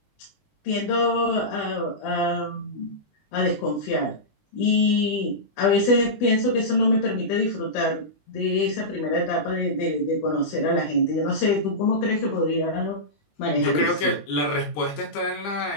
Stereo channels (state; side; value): late; right; 20 ms